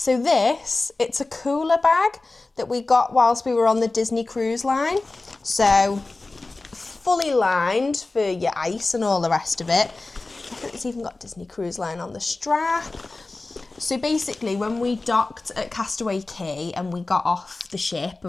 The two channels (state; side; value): quieter; right; 3.3 dB